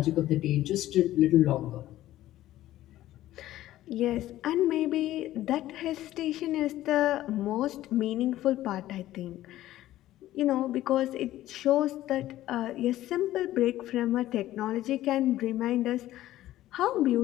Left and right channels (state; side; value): quieter; right; 14.5 dB